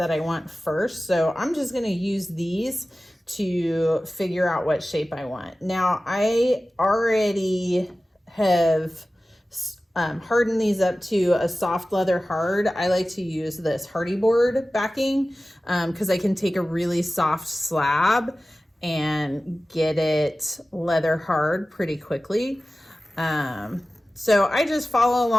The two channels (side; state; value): both; normal; correlation 0.96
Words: I want first. So I'm just going to use these to figure out what shape I want. Now I already have hardened these up to a soft leather hard. I like to use this hardy board backing because I can take a really soft slab and get it leather hard pretty quickly. So I just follow